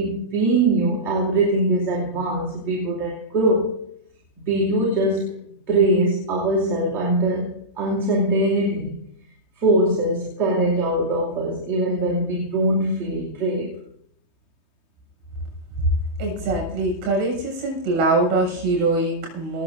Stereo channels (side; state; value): right; late; 3.2 ms